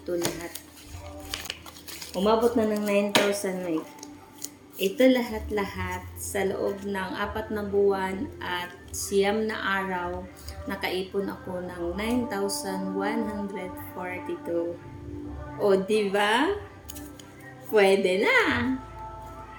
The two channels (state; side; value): identical; both; correlation 1.00